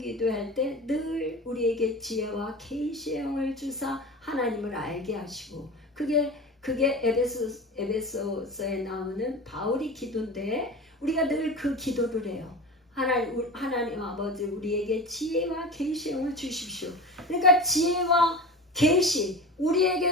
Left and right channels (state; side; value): normal; both; correlation 0.31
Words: 때 늘 우리에게 지혜와 계시의 영을 주사 하나님을 알게 하시고 그게 에베소서에 나오는 바울이 기도인데 우리가 늘 그 기도를 해요. 하나님 아버지 우리에게 지혜와 계시의 영을 주십시오. 그러니까 지혜와 계시,